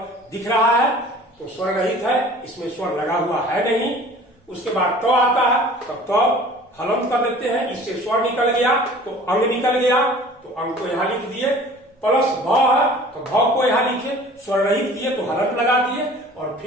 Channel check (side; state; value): both; normal; correlation 0.46